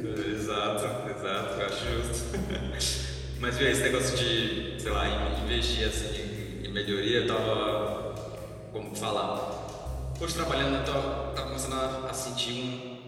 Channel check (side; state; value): both; identical; correlation 1.00